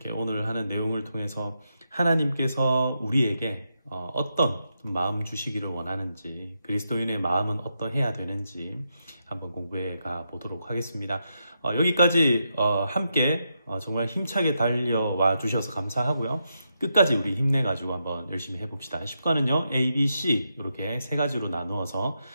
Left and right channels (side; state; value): both; inverted; correlation -0.83